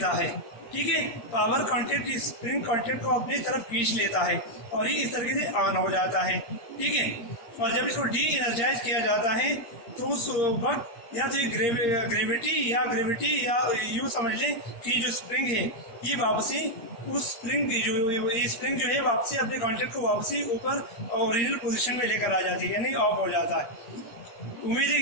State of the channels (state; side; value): late; right; 8.6 ms